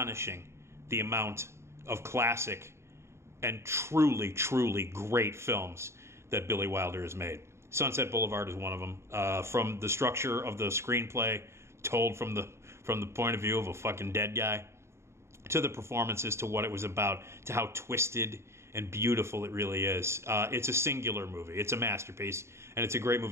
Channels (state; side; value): late; left; 0.13 ms